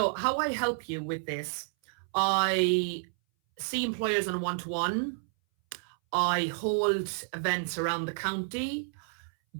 how I help you with this, I see employers on a one-to-one. I hold events around the county.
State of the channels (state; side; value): silent; left; 58 dB below the other